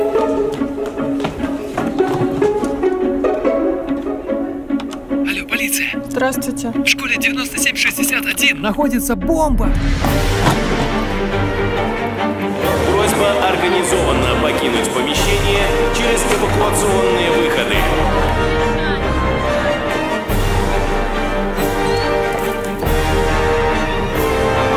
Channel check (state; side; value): identical; both; correlation 1.00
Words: полиция! Здравствуйте. В школе 9761 Находится бомба! Просьба организованно покинуть помещение через эвакуационные выходы.